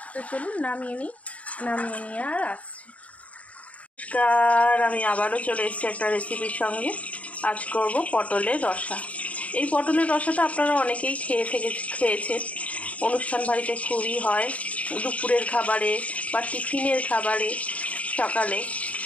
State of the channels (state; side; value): late; right; 0.067 ms